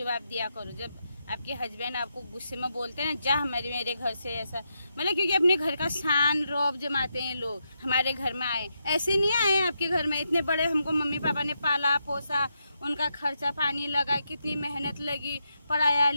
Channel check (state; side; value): inverted; both; correlation -0.83